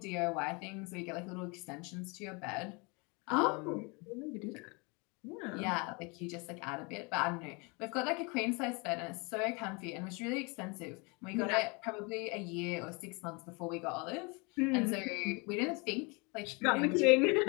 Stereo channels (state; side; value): quieter; right; 29.8 dB